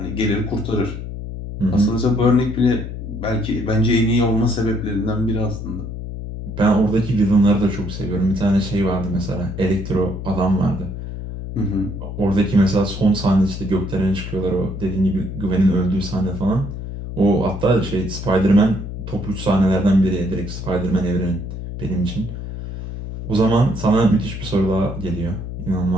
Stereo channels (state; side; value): noise; left; hum, 8 dB below the sound